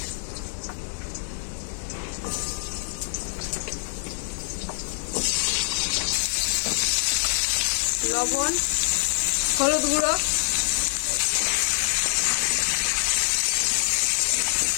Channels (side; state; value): right; silent; digital silence